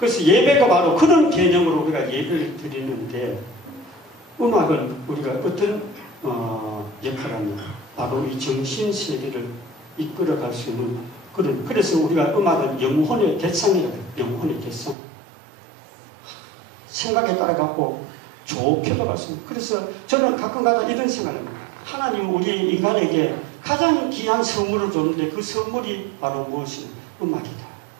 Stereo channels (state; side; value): drops out; left; at 15.0 s